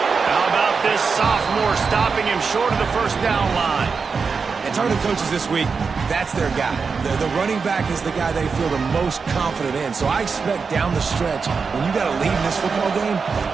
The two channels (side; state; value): left; quieter; 5.2 dB